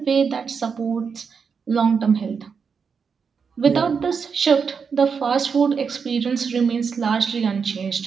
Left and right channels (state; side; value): quieter; left; 5.9 dB